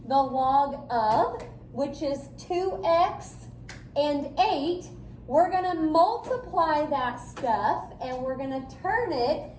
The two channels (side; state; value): both; identical; correlation 1.00